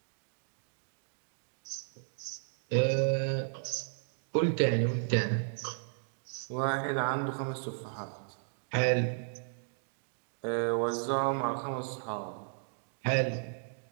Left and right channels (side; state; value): left; silent; digital silence